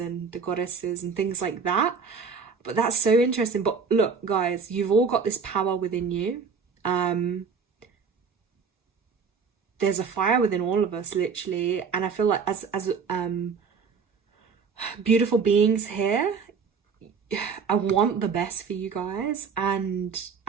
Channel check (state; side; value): quieter; left; 5.7 dB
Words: the goddesses and things like that. But that's so interesting. But look, guys, you've all got this power within you. There's a fire within all of us, literally. And I feel like as beautiful beings here, I want the best for you guys, and